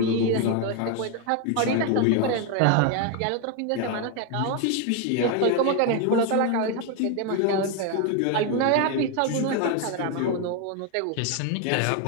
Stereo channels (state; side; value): different; both; correlation 0.01